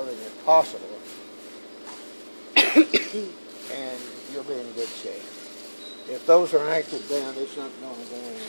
as possible, and you'll be in good shape. If those are anchored down, it's not going to go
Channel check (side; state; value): both; inverted; correlation -1.00